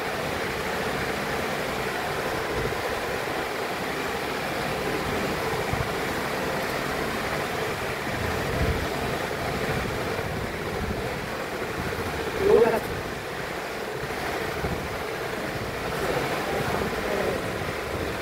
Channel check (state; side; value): identical; both; correlation 1.00